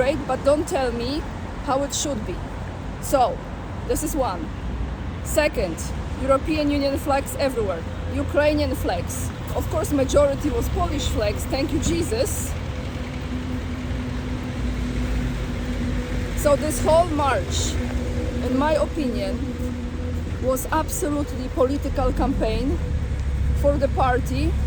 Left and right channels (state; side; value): identical; both; correlation 1.00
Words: but don't tell me how it should be. So, this is one. Second, European Union flags everywhere. Ukrainian flags. Of course, majority was Polish flags, thank you Jesus. So this whole march, in my opinion, was absolutely political campaign for the party